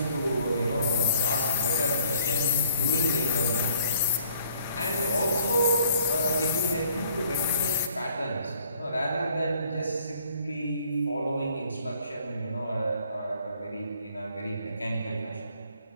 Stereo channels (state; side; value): inverted; both; correlation -0.59